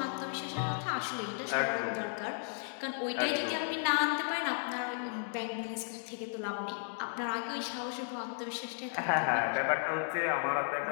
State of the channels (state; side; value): silent; right; digital silence